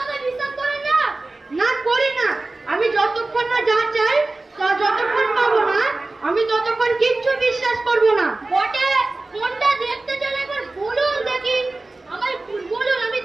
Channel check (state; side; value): quieter; left; 3.1 dB